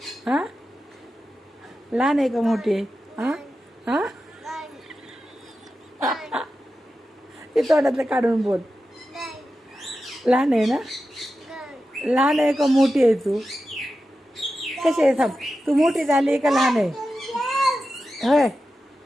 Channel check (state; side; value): normal; both; correlation 0.91